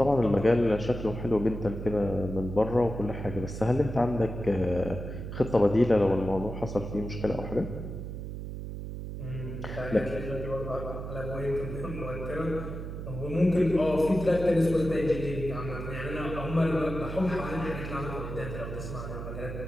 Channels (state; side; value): noise; right; hum, 7 dB below the sound